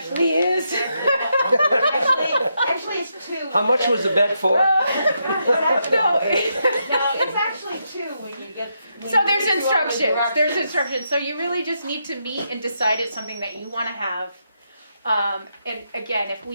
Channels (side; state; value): both; inverted; correlation -0.81